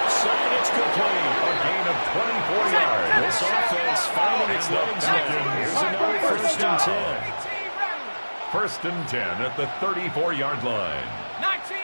side, it's complete. A gain of 24 yards. This offense finding its legs now. Here's another first and 10. First and 10 at the 34-yard line. 19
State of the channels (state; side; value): inverted; both; correlation -1.00